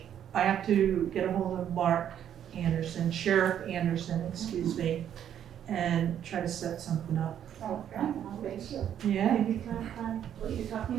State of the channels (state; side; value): quieter; left; 9.8 dB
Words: I have to get a hold of Mark Anderson, Sheriff Anderson, excuse me, and try to set something up. Okay. Yeah. Maybe clarify what you're